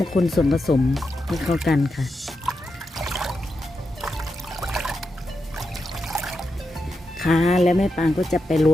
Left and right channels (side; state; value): both; normal; correlation 0.87